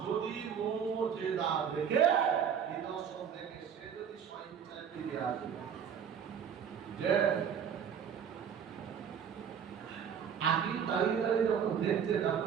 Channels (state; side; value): quieter; left; 7.9 dB